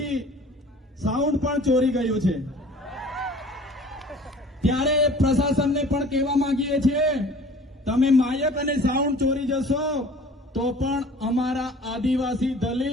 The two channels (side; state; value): both; normal; correlation 0.48